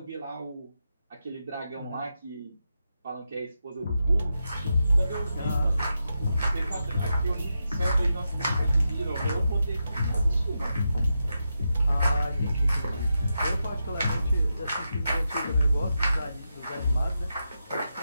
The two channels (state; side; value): inverted; both; correlation -0.87